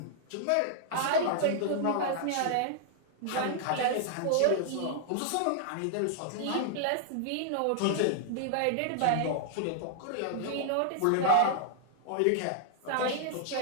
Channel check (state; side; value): different; both; correlation 0.00